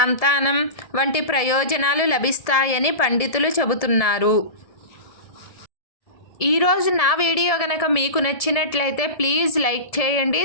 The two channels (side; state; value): right; late; 1.7 ms